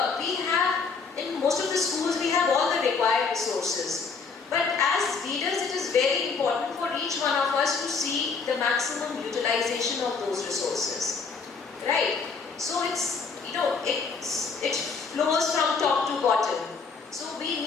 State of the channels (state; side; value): quieter; right; 5.0 dB